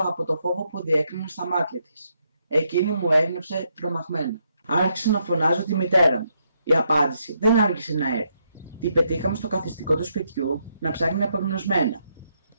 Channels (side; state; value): both; inverted; correlation -0.77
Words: το φόβο που διέκρινα στα μάτια της. Εκείνη μου έγνεψε τρομαγμένα. Άρχισα να φωνάζω τη μητέρα μου. Η απάντηση δεν άργησε να έρθει. Την πετύχαμε στο καθιστικό του σπιτιού να ψάχνει απεγνωσμένα.